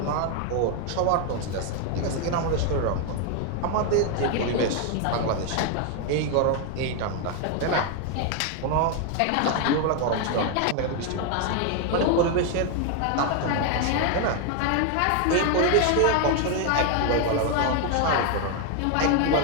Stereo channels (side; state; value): both; different; correlation 0.01